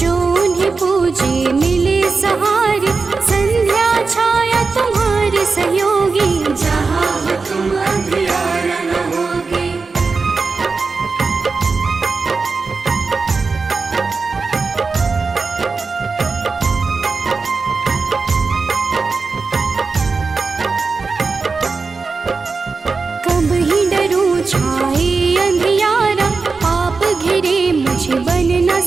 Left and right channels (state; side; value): quieter; left; 4.4 dB